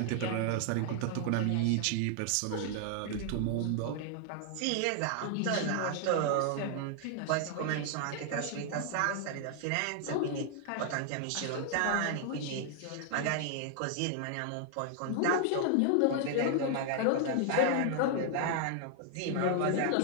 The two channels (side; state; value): both; different; correlation 0.00